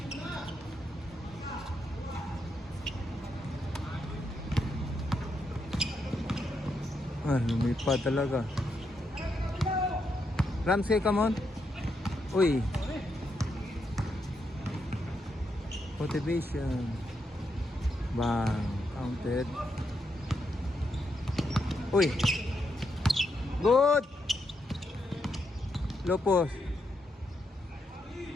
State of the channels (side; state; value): both; normal; correlation 0.81